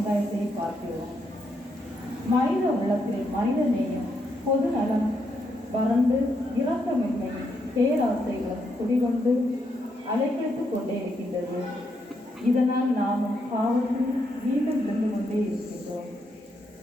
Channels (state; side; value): normal; both; correlation 0.79